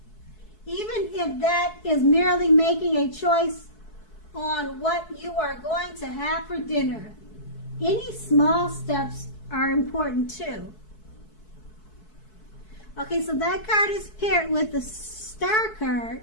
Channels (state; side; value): late; right; 4.6 ms